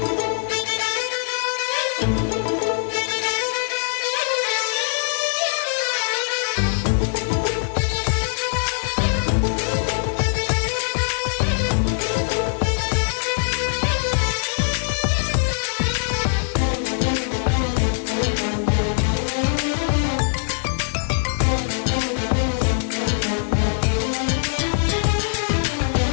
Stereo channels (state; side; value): silent; right; digital silence